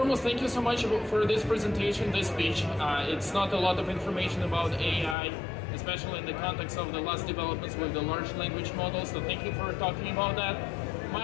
thank you so much for this presentation, this speech. It's not a lot of information about AI, especially in the context of the last developments with the large language models, so thank you for talking about that.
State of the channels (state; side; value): drops out; right; at 5.2 s